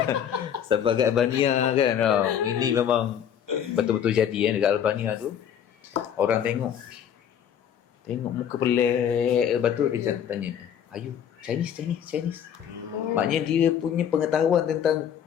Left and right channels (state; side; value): quieter; right; 9.0 dB